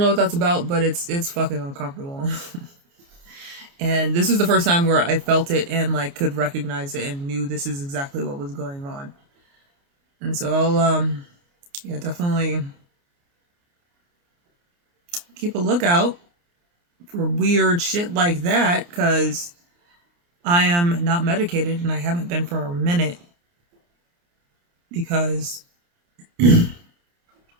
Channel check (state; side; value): late; left; 29 ms